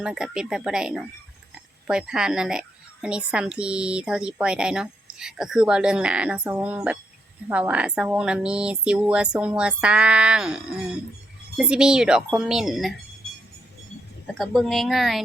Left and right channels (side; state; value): both; normal; correlation 0.79